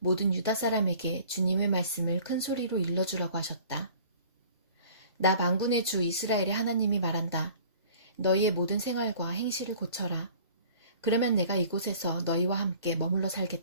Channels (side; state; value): both; inverted; correlation -0.48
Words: 유다 사람에게 주님의 말씀을 큰 소리로 일러주라고 하셨다. 나 만군의 주 이스라엘의 하나님이 말한다. 너희의 모든 생활과 행실을 고쳐라. 그러면 내가 이곳에서 너희와 함께 머물러